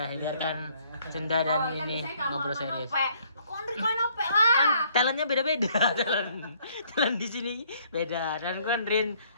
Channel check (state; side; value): inverted; both; correlation -0.64